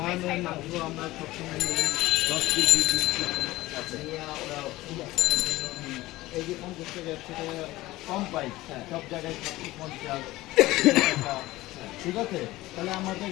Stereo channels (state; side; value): quieter; right; 18.0 dB